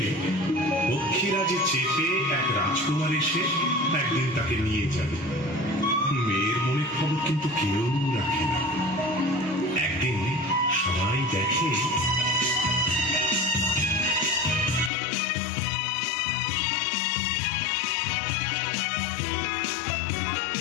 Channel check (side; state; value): right; drops out; at 14.9 s